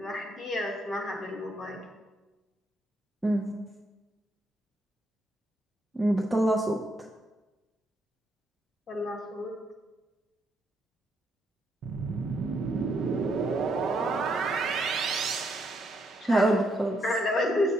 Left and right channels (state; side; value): normal; both; correlation 0.76